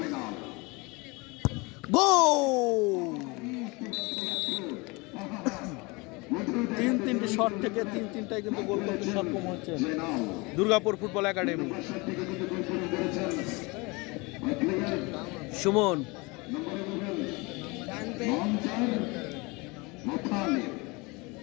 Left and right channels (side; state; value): right; quieter; 26.1 dB